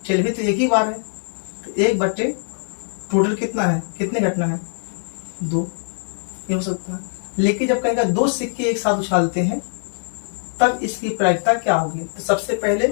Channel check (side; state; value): right; silent; digital silence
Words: टेल भी तो एक ही बार है, तो 1 बटे टोटल कितना है, कितनी घटना है, 2। ये हो सकता है। लेकिन जब कहेगा 2 सिक्के एक साथ उछालते हैं, तब इसकी प्रायिकता क्या होगी। तो सबसे पहले